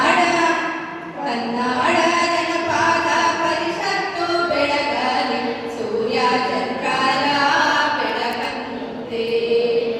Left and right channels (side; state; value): both; identical; correlation 1.00